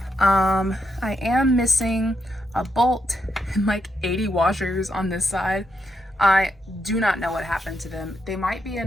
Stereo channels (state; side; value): normal; both; correlation 0.81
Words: I am missing a bolt and like 80 washers on this side. I do not know what happened to them. They might be